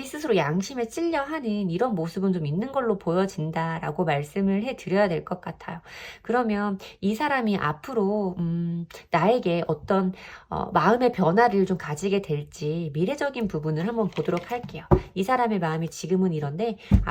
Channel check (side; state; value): both; identical; correlation 1.00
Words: 스스로 양심에 찔려 하는 이런 모습은 좀 있는 걸로 보여진다라고 말씀을 해드려야 될 것 같아요. 그러면 이 사람이 앞으로 나에게 어떤 마음의 변화를 좀 가지게 될지 미래적인 부분을 한번 보도록 할게요. 이 사람의 마음이 지금은 이런데